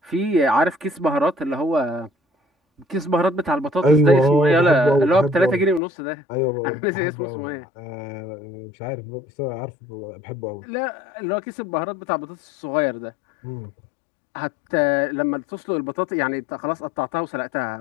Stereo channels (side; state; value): right; drops out; at 5.8 s